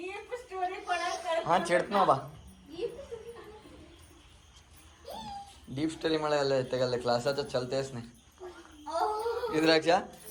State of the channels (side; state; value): both; identical; correlation 1.00